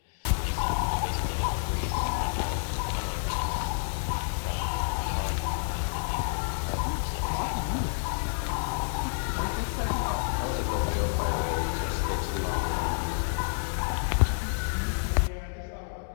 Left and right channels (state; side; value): silent; right; digital silence